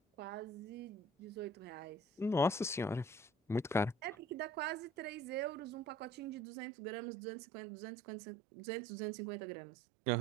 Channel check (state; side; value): drops out; left; at 6.4 s